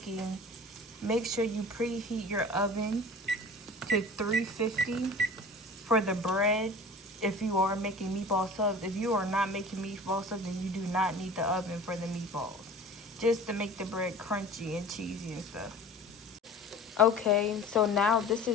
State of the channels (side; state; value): both; normal; correlation 0.41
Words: make sure you preheat your oven to 350 for the bread. If you are making meatball subs, if you are not making meatball subs, then you do not need the oven for the meatballs, just to make the bread crunchy and cheesy and stuff. Okay, so now this